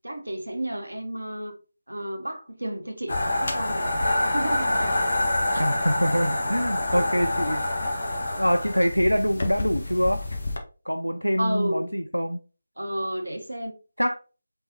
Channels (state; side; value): inverted; both; correlation -0.97